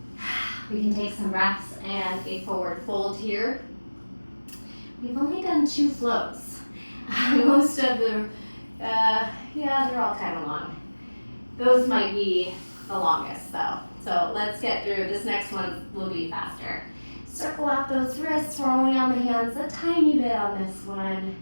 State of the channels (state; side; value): inverted; both; correlation -1.00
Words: We can take some breaths and a forward fold here. We've only done 2 flows. Most of the, they're all kind of long. Those might be the longest though. So let's get through. This next one will be faster. Circle out those wrists. We're only on the hands a tiny bit on this one